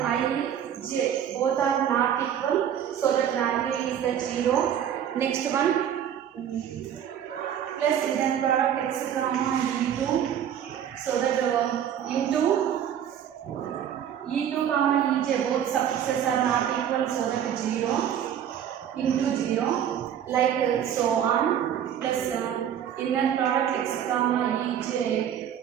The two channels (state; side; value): quieter; left; 9.5 dB